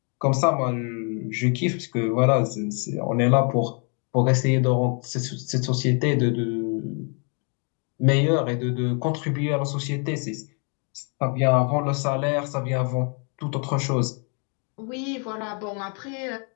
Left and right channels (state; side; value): quieter; right; 38.3 dB